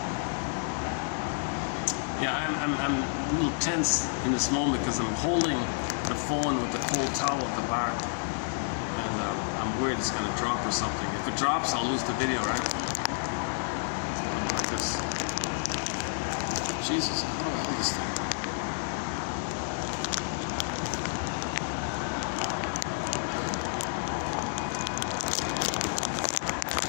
Yeah, I'm a little tense in this moment because I'm holding the phone with the cold towel at the back, and I'm worried it's going to drop or something. If it drops, I'll lose the video, right? How about like this? Jesus, how do I hold this thing?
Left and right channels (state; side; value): silent; right; digital silence